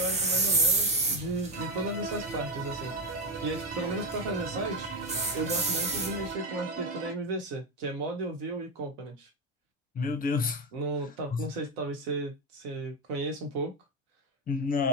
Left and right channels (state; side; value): normal; both; correlation 0.11